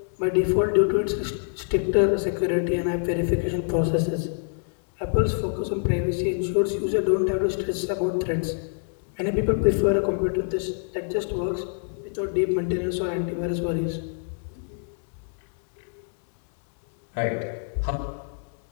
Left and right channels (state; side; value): silent; right; digital silence